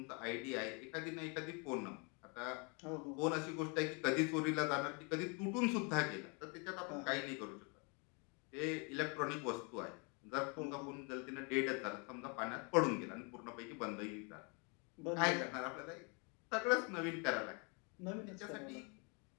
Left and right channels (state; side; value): quieter; right; 33.6 dB